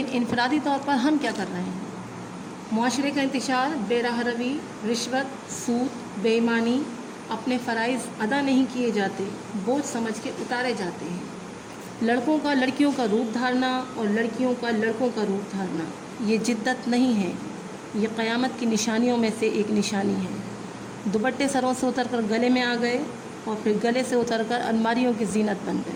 انفرادی طور پر ہم کیا کر رہے ہیں؟ معاشرے کا انتشار، بے راہ روی، رشوت، سود، بے ایمانی، اپنے فرائض ادا نہیں کیے جاتے، بوجھ سمجھ کے اتارے جاتے ہیں. لڑکوں کا لڑکیوں کا روپ دھارنا اور لڑکیوں کا لڑکوں کا روپ دھارنا یہ جدت نہیں ہے، یہ قیامت کی نشانیوں میں سے ایک نشانی ہے. دوپٹے سروں سے اتر کر گلے میں آ گئے اور پھر گلے سے اتر کر الماریوں کی زینت بن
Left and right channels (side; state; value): both; identical; correlation 1.00